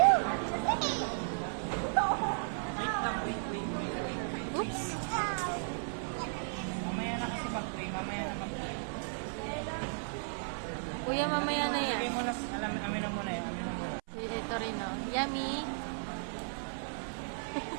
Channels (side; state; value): left; silent; 54 dB below the other